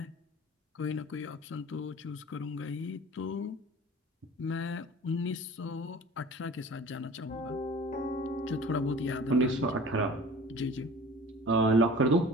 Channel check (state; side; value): normal; both; correlation 0.42